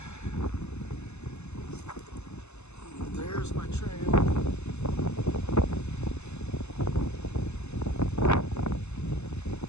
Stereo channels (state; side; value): late; right; 0.81 ms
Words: There's my trail.